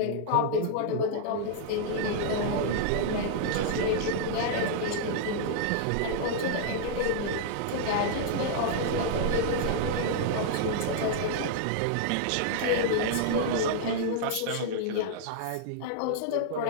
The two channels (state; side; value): different; both; correlation -0.01